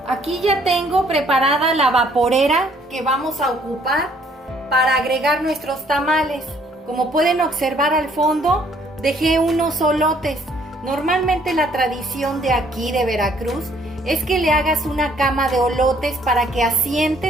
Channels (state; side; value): normal; both; correlation 0.63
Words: Aquí ya tengo preparada la vaporera que vamos a ocupar para agregar nuestros tamales. Como pueden observar al fondo, dejé unos olotes. Normalmente la tradición de aquí de Veracruz es que le hagas una cama de olotes para que